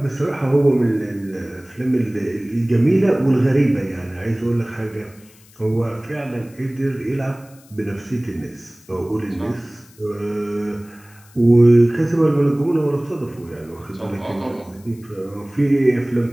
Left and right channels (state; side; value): noise; left; hiss, 27 dB below the sound